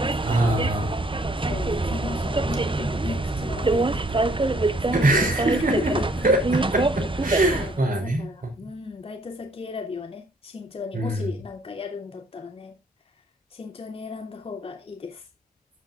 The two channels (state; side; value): normal; both; correlation 0.63